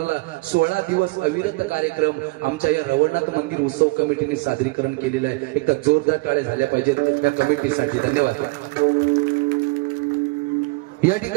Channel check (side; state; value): left; quieter; 25.7 dB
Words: 16 दिवस अविरत कार्यक्रम आमच्या या रवळनाथ मंदिर उत्सव कमिटीने सादरीकरण केलेलं आहे. एकदा जोरदार टाळे झाल्या पाहिजेत या कमिटीसाठी. धन्यवाद. या